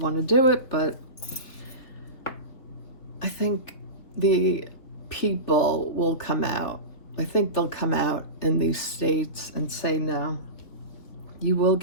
to do it, but I think the people will come out. I think they'll come out in these states and say, no, you will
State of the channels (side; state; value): right; late; 3.3 ms